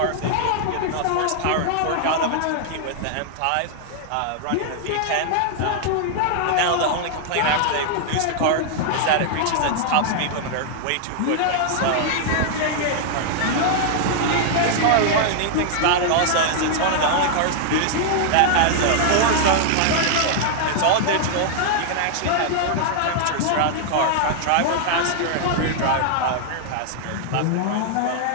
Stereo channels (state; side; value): different; both; correlation -0.01